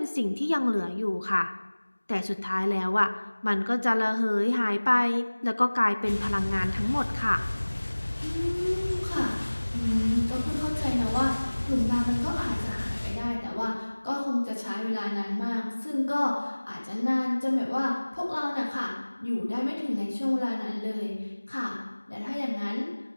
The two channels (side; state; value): both; inverted; correlation -1.00